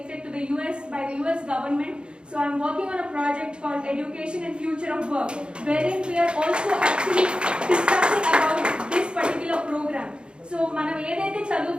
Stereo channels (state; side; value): late; left; 0.054 ms